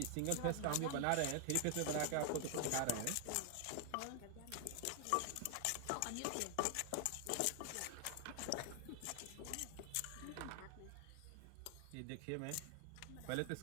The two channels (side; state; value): both; different; correlation 0.00